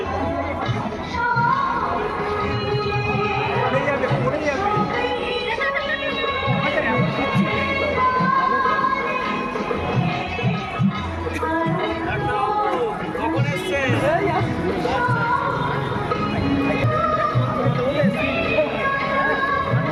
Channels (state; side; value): identical; both; correlation 1.00